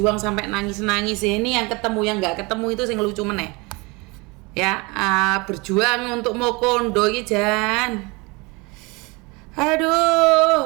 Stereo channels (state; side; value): quieter; left; 26.5 dB